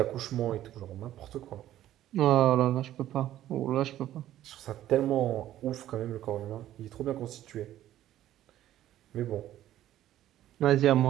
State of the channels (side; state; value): left; quieter; 13.0 dB